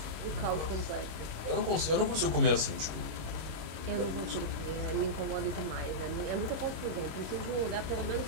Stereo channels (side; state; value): left; late; 26 ms